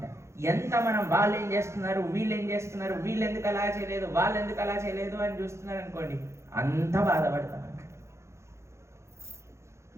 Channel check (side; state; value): left; late; 0.13 ms